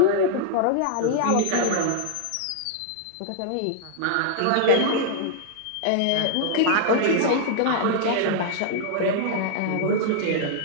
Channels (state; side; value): different; both; correlation -0.01